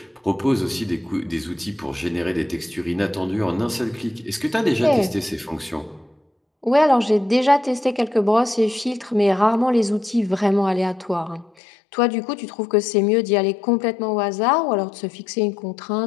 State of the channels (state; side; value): drops out; right; at 11.5 s